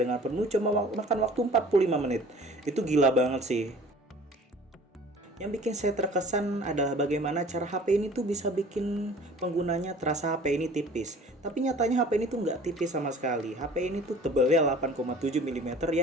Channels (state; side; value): normal; both; correlation 0.47